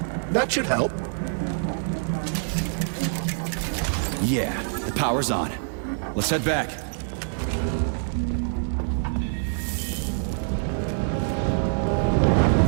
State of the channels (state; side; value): silent; left; 60 dB below the other